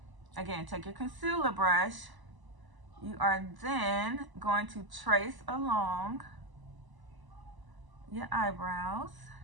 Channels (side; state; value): left; late; 1.0 ms